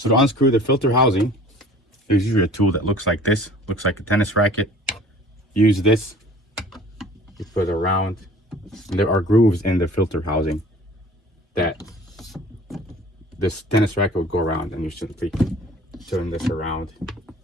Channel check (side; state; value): both; normal; correlation 0.47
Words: to unscrew the filter housing, there's usually a tool that looks like this, looks like a tennis racket. Use this, you put it around, and there are grooves in the filter housing that this tennis racket would go around, and you simply turn this around